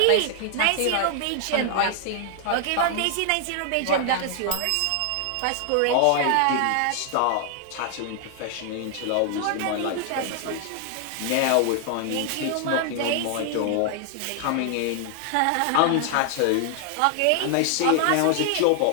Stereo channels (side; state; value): both; different; correlation 0.00